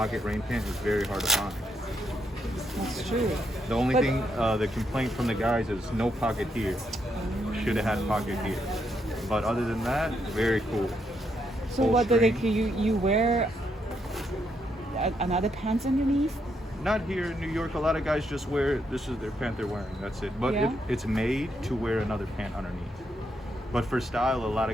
rain pant is very hard to find. That's true. The only thing, the complaint from the guys is no pocket here. Should have had pocket here. But other than that, very cool. So Full what do they? string. You wear another pants underneath? Not here in New York. A lot of guys just wear, this is their pant they're wearing. That's it. But Yeah. it's made to wear another pant underneath. But for style, a lot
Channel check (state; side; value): normal; both; correlation 0.78